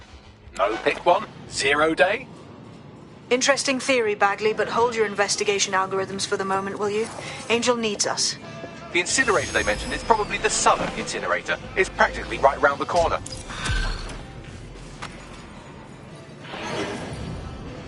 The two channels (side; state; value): both; identical; correlation 1.00